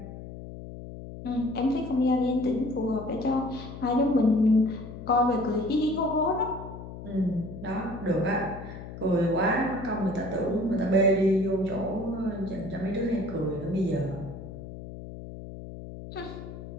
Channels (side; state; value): left; noise; hum, 12 dB below the sound